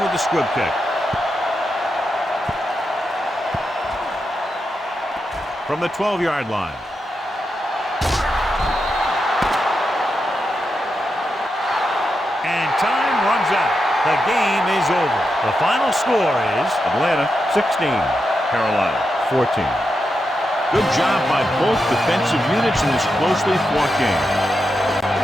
with the squib kick. From the 12-yard line. And time runs out. The game is over. The final score is Atlanta 16, Carolina 14. Good job by both defensive units in this closely fought game.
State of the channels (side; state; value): both; normal; correlation 0.86